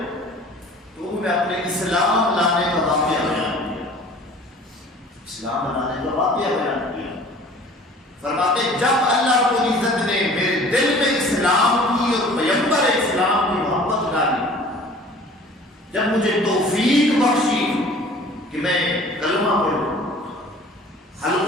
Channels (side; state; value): both; normal; correlation 0.47